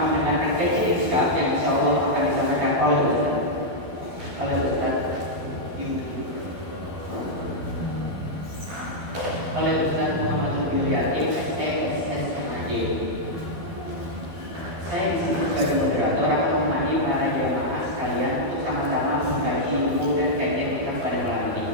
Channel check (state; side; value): late; left; 12 ms